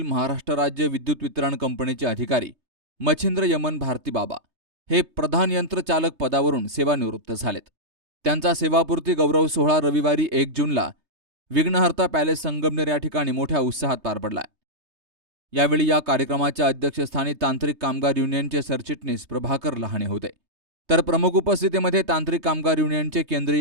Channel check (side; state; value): left; late; 3.2 ms